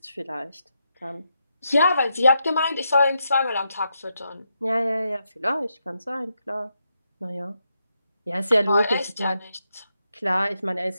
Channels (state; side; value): inverted; both; correlation -0.83